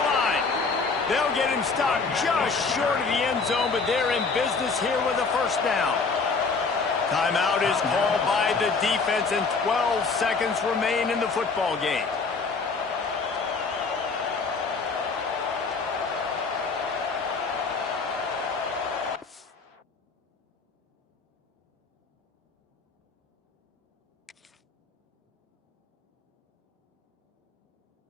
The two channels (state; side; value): quieter; right; 4.5 dB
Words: line. They'll get him stopped just short of the end zone, but they're in business here with a first down. Timeout is called by the defense, and 12 seconds remain in the football game.